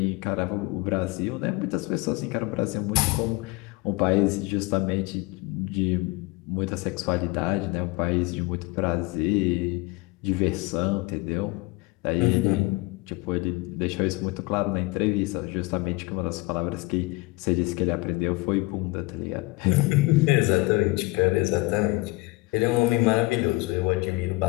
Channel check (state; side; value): quieter; right; 23.8 dB